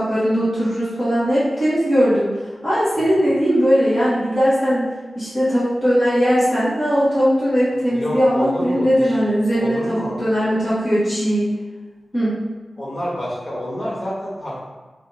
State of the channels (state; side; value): normal; both; correlation 0.95